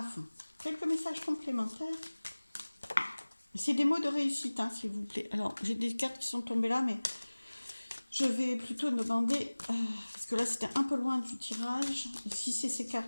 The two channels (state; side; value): inverted; both; correlation -1.00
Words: fond. Quelques messages complémentaires. C'est des mots de réussite, hein, s'il vous plaît. Alors, j'ai des cartes qui sont tombées là, mais je vais plutôt demander, parce que là, c'était un peu loin du tirage. Si c'est ces